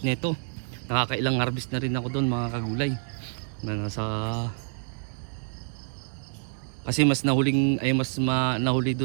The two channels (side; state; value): left; silent; 59 dB below the other